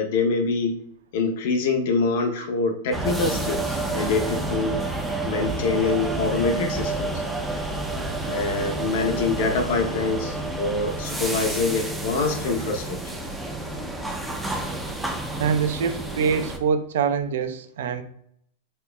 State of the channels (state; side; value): normal; both; correlation 0.00